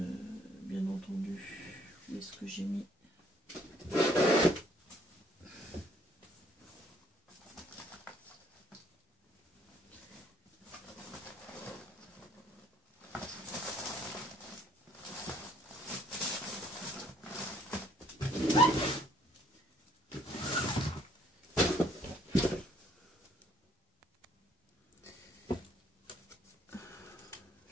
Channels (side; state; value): both; normal; correlation 0.63